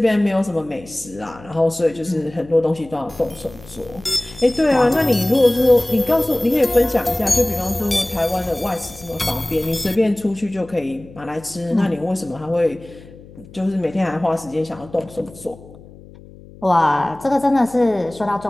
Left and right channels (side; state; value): left; noise; hum, 20 dB below the sound